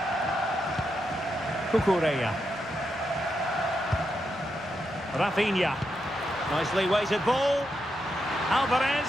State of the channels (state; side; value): noise; right; rumble, 26 dB below the sound